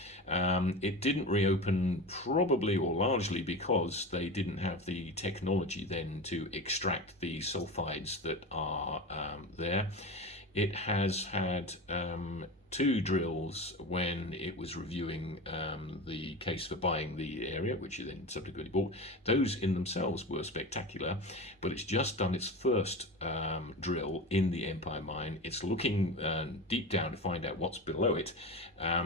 It didn't reopen, probably or largely because they didn't have the technology then to extract the sulfides that are there. It has had 2 drills when it was reviewing the case for buying the area, which it then subsequently bought. Those in themselves were spectacular, but it's just done its first drill in the Empire Mine. It's looking deep down to find out what's below it.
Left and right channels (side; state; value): both; normal; correlation 0.27